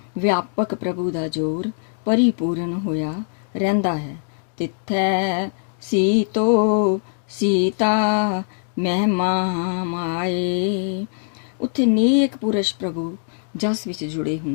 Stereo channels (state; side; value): silent; right; digital silence